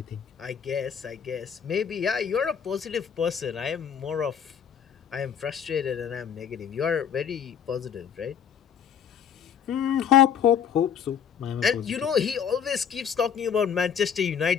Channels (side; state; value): right; quieter; 7.9 dB